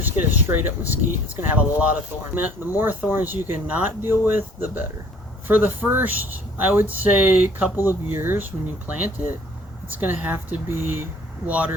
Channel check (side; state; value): both; normal; correlation 0.55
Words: get a straight up mesquite, it's going to have a lot of thorns. The more thorns you can not deal with, the better. For the first, I would say, couple of years when you plant it, it's going to have to be